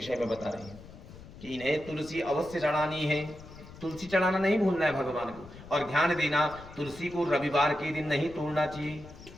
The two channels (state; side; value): noise; left; rumble, 17 dB below the sound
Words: में बता रहे हैं कि इन्हें तुलसी अवश्य चढ़ानी है। तुलसी चढ़ाना नहीं भूलना है भगवान को। और ध्यान देना, तुलसी को रविवार के दिन नहीं तोड़ना चाहिए।